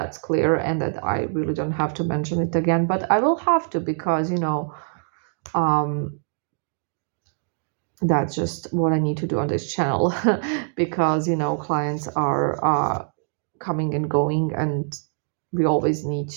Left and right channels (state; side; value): silent; left; digital silence